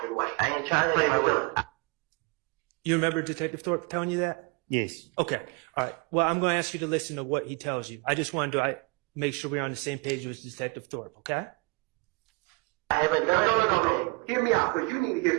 way. I ain't trying to play my will. You remember Detective Thorpe telling you that? Yes. Okay. All right. Well, I'm going to ask you to listen to what he tells you. I just wanted to make sure we're on the same page with Detective Thorpe, okay? I haven't done no. Hear me out, because you need to get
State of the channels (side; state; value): left; quieter; 29.6 dB